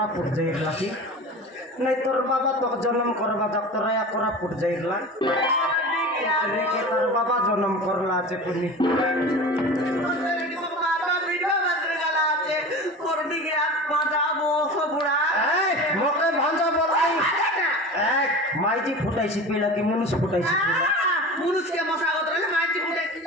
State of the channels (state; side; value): normal; both; correlation 0.33